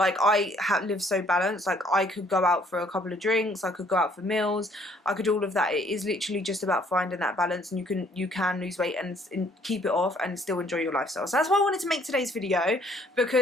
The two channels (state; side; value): normal; both; correlation 0.62